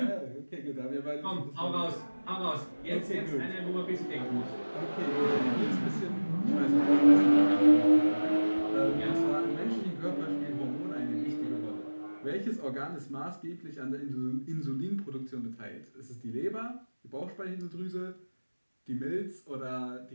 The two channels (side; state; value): both; inverted; correlation -1.00